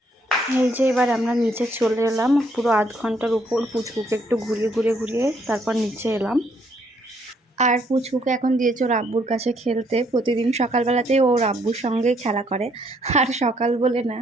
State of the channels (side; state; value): both; normal; correlation 0.69